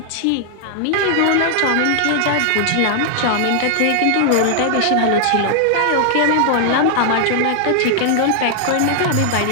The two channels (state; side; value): different; both; correlation -0.01